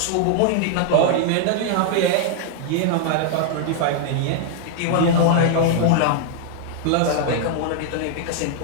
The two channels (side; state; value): both; different; correlation 0.00